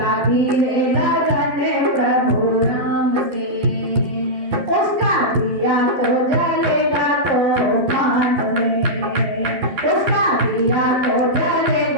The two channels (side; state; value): left; late; 11 ms